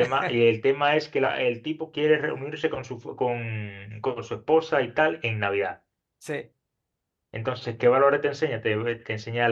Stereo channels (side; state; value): both; identical; correlation 1.00